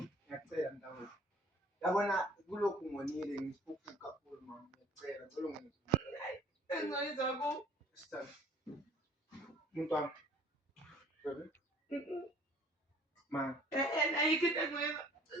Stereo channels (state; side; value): normal; both; correlation 0.53